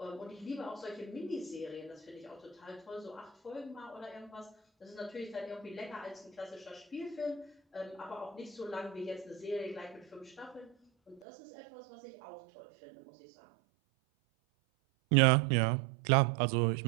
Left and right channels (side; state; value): left; drops out; at 11.2 s